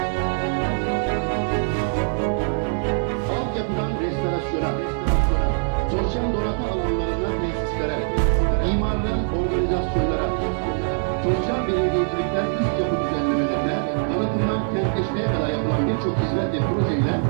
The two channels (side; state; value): left; silent; digital silence